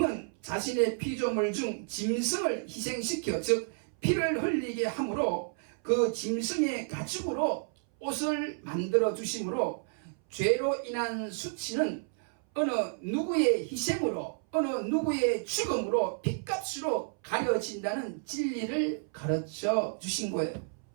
자신의 피조물 중 짐승을 희생시켜, 즉 피를 흘리게 함으로 그 짐승의 가죽으로 옷을 만들어 주심으로 죄로 인한 수치는 어느 누구의 희생으로, 어느 누구의 죽음으로, 핏값으로 가려진다는 진리를 가르쳐 주신 거예요.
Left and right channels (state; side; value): silent; left; 57 dB below the other